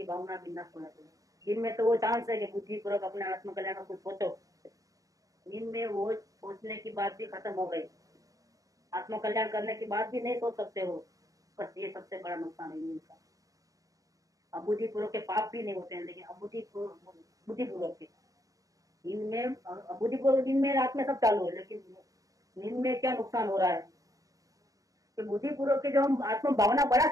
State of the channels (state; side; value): late; left; 0.17 ms